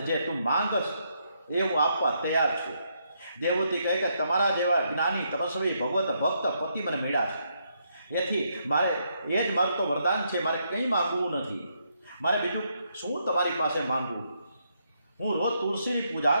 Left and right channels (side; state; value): both; inverted; correlation -0.76